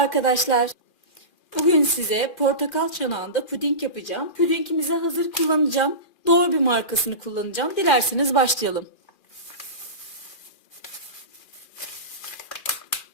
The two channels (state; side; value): late; right; 2.4 ms